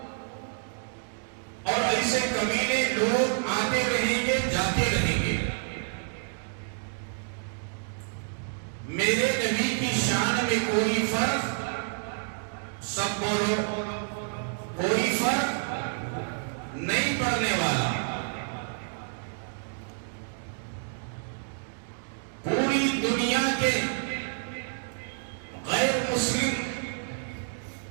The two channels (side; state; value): left; silent; digital silence